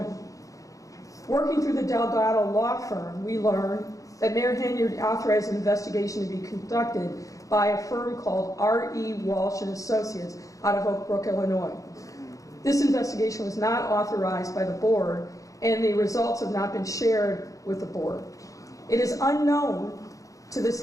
Working through the Delgado law firm, we learned that Mayor Henyard authorized an investigation to be conducted by a firm called R.E. Walsh and Associates out of Oak Brook, Illinois. This investigation was not authorized by the board, and the results have not been shared with the board. It is unknown to this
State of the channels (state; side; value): late; right; 0.16 ms